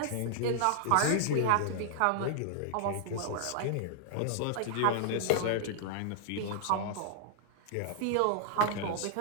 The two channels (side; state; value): both; different; correlation 0.00